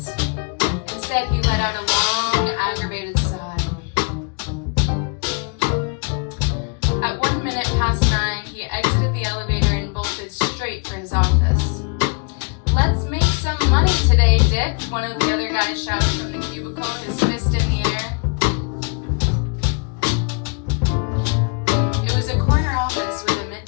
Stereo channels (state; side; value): quieter; right; 37.1 dB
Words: Instead, he let out a long, aggravated sigh. At 1 minute past 9, he exited the elevator and bolted straight for his office. "Let's make some money today, Dick," one of the other guys shouted from the cubicle, his fist in the air. It was a corner office with a